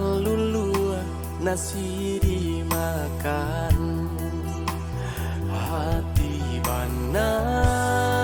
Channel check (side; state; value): both; identical; correlation 1.00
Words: nasi dimakan, hati bana